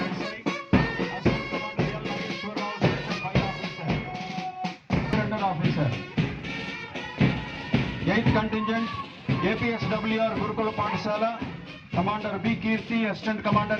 Eighth contingent APSWR Gurukula Pathshala, Commander B. Kirti, Assistant Commander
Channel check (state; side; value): identical; both; correlation 1.00